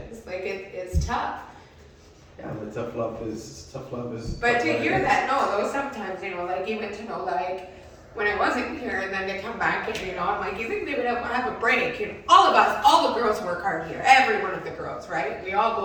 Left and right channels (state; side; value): identical; both; correlation 1.00